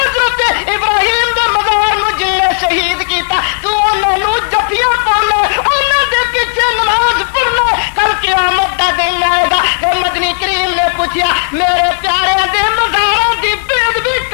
ابراہیم دے مزار نو جن نے شہید کیتا، تو انہاں نو جفیاں پاؤنا، انہاں دے پیچھے نماز پڑھنا، کل قیامت دا دن آئے گا۔ کہ مدنی کریم نے پوچھیا میرے پیارے دے مزاراں دی بے ادبی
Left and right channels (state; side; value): silent; right; digital silence